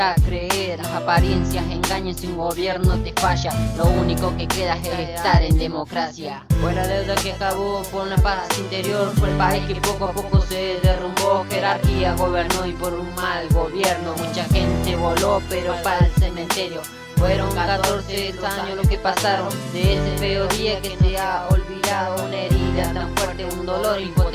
creer. Las apariencias engañan si un gobierno te falla, lo único que queda es estar en democracia. Fue la deuda que acabó por una paz interior, fue el país que poco a poco se derrumbó. Jerarquía gobernó y por un mal gobierno mucha gente voló, pero para el cementerio. Fueron 14 años lo que pasaron de ese feo día que se ha olvidado. Una herida tan fuerte, un dolor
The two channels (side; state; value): both; identical; correlation 1.00